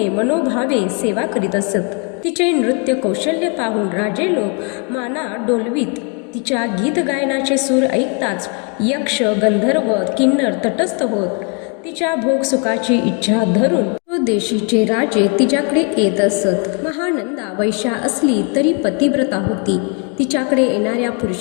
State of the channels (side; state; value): right; quieter; 34.5 dB